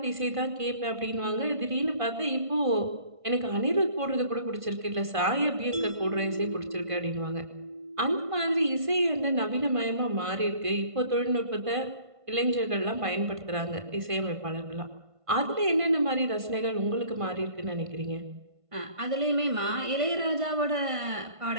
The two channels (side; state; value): left; late; 1.5 ms